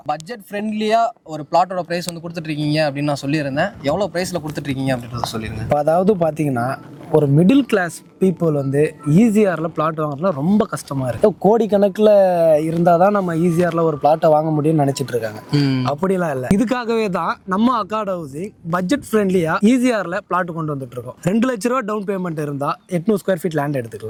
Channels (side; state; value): both; identical; correlation 1.00